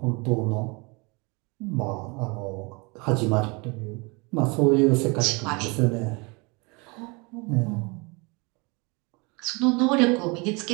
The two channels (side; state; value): left; quieter; 28.7 dB